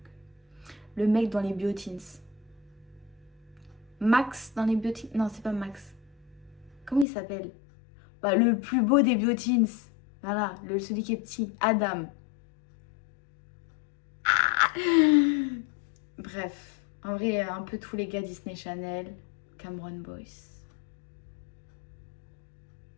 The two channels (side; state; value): right; drops out; at 7.1 s